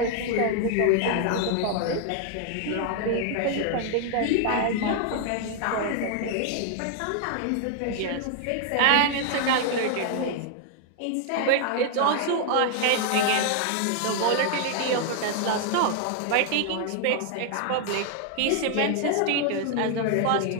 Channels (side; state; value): both; different; correlation 0.00